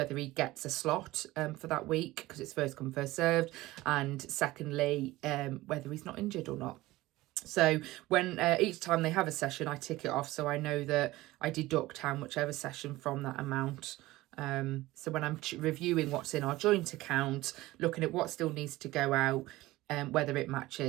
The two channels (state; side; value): quieter; left; 18.3 dB